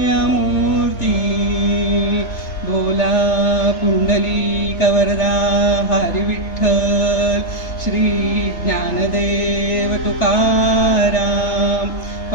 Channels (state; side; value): late; right; 3.3 ms